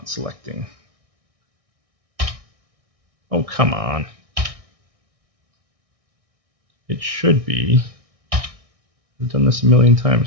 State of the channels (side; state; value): left; late; 1.6 ms